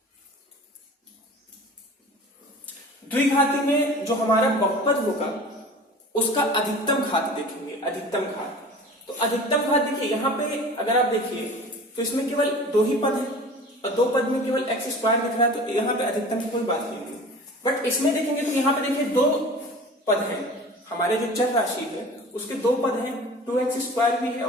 द्विघाती में जो हमारा बहुपद होगा उसका अधिकतम घात देखेंगे, अधिकतम घात। तो अधिकतम घात देखिए यहां पे अगर आप देखिए तो इसमें केवल दो ही पद है और दो पद में केवल x स्क्वायर दिख रहा है, तो यहाँ पे अधिकतम की कोई बात नहीं है। बट इसमें देखेंगे तो यहाँ पे देखिए दो पद हैं, हमारे जो चर राशि है उसके दो पद हैं, 2x स्क्वायर भी है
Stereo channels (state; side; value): normal; both; correlation 0.40